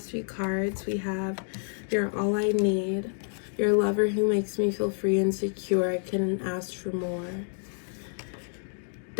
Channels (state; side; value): silent; right; 59 dB below the other